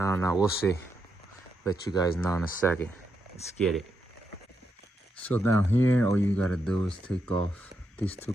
know, we'll see. Let you guys know in a second. Let's get it. So down here, all you gotta do is take off these 2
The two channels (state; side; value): normal; both; correlation 0.82